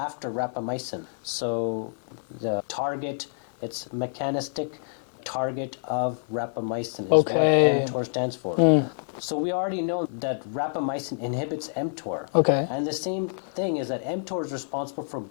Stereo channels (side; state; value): right; silent; digital silence